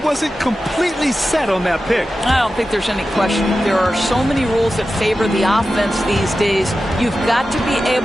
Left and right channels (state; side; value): normal; both; correlation 0.93